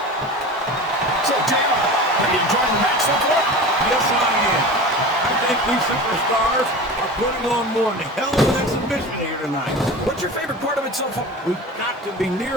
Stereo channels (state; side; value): normal; both; correlation 0.33